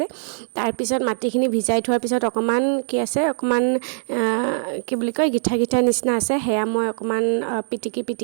তাৰপিছত মাটিখিনি ভিজাই থোৱাৰ পিছত অকণমান কি আছে অকণমান কি বুলি কয় গিঠা নিচিনা আছে সেয়া মই অকণমান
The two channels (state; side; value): silent; left; digital silence